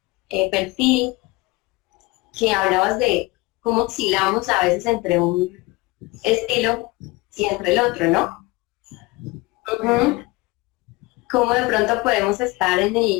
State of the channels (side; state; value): right; quieter; 22.6 dB